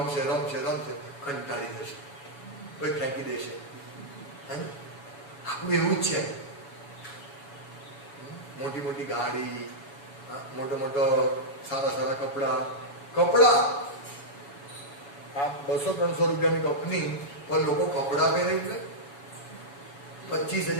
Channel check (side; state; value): right; late; 7.1 ms